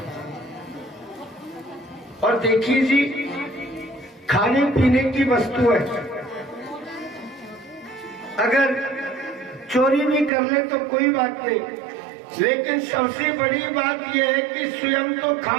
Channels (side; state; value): left; drops out; at 10.3 s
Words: और देखिए जी, खाने पीने की वस्तु है, अगर चोरी भी कर ले तो कोई बात नहीं, लेकिन सबसे बड़ी बात यह है कि स्वयं तो